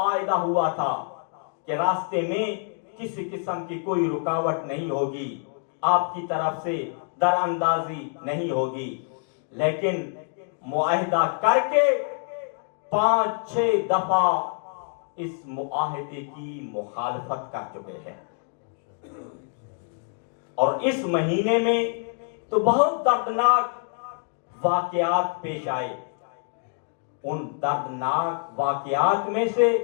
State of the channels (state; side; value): silent; right; 57 dB below the other